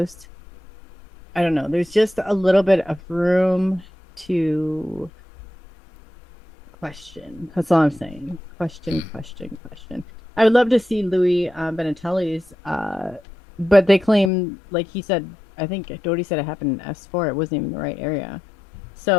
I don't know, there's just a little bit of room to question. That's all I'm saying. Question. I would love to see Louis Benatelli's, but they claim, like he said, I think Doty said it happened in S4. It wasn't even the right area.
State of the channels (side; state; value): right; drops out; at 14.3 s